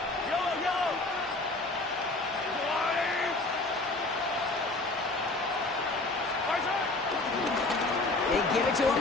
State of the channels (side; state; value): right; quieter; 3.0 dB